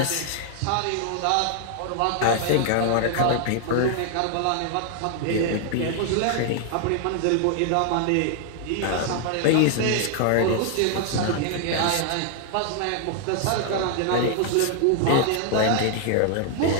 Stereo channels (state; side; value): different; both; correlation 0.00